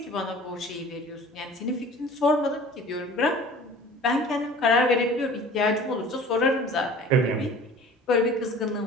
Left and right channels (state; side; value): normal; both; correlation 0.45